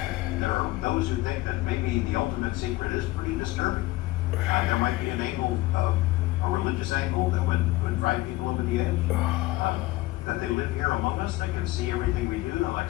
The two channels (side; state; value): right; quieter; 18.6 dB